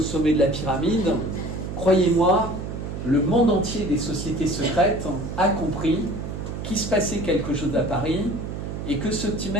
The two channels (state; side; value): noise; right; hum, 6 dB below the sound